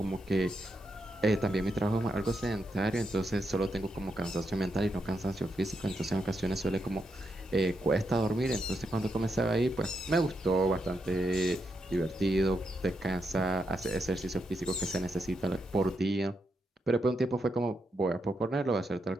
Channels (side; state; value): both; normal; correlation 0.83